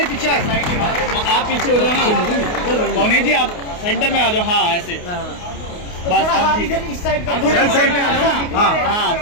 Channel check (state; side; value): late; right; 28 ms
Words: पीछे आप पीछे हो जाओ ना मौनी जी आप सेंटर में आ जाओ। हाँ ऐसे बस आप इधर इस साइड साइड में आ जाओ ना। हाँ हाँ